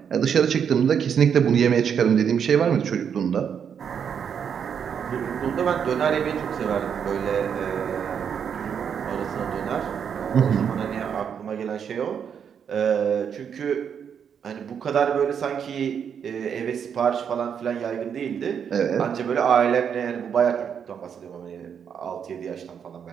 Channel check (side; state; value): left; quieter; 7.6 dB